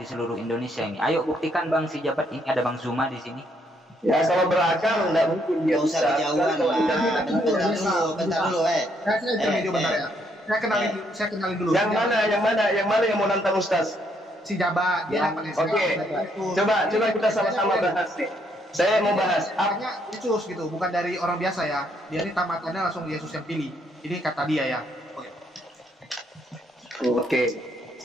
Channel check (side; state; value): both; normal; correlation 0.72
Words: seluruh Indonesia ini. Ayo buktikan Bang, si jabat ini ada Bang Zuma di sini. Ya, kalau berakal nggak mungkin dia usah kejauhan lah. Bentar dulu. Saya kenalin dulu. Yang mana yang mau nantang Ustaz? Si jabat. Dia Oke. Coba kita sama-sama bahas nih. Saya mau bahas. Artinya Yesus gitu, bukan dari orang biasa ya. Dia ini tamatannya langsung Yesus yang pilih. Ini kata dia ya. Oke.